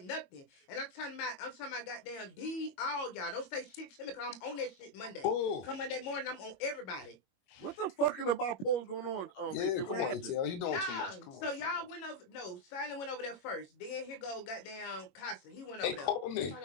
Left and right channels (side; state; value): right; late; 22 ms